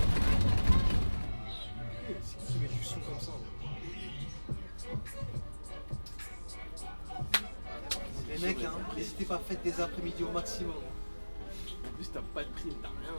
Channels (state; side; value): inverted; both; correlation -1.00